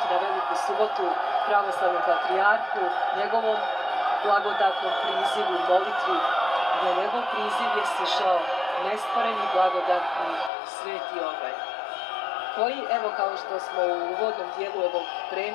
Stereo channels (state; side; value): drops out; right; at 10.5 s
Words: na Veliku subotu pravoslavnom patrijarhu, njegovom blagodatnom prizivu, molitvi, gdje njegov priziv je stišao nestvoreni blagodatni sveti obaj, koji, evo kao što smo u uvodnom dijelu ovog